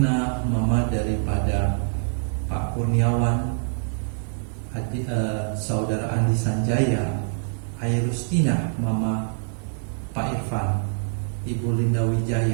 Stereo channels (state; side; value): silent; left; digital silence